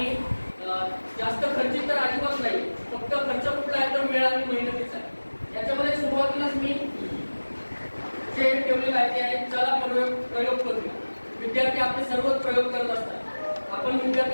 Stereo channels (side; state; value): both; inverted; correlation -1.00